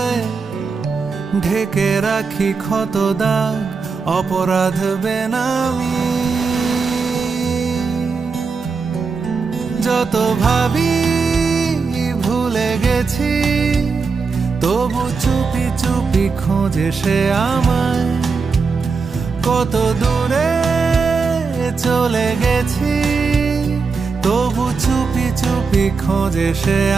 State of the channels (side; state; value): left; quieter; 4.8 dB